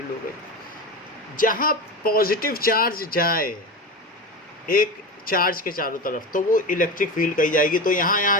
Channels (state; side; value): normal; both; correlation 0.24